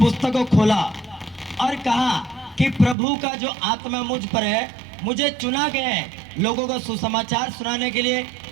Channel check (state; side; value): drops out; left; at 3.0 s